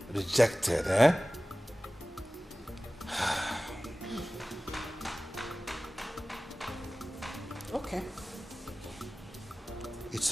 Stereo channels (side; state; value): both; normal; correlation 0.97